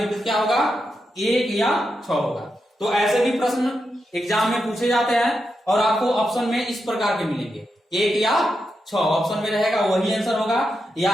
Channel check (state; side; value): normal; both; correlation 0.86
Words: क्या होगा, 1 या 6 होगा। तो ऐसे भी प्रश्न एग्जाम में पूछे जाते हैं और आपको ऑप्शन में इस प्रकार के मिलेंगे, 1 या 6 ऑप्शन में रहेगा, वही आंसर होगा। या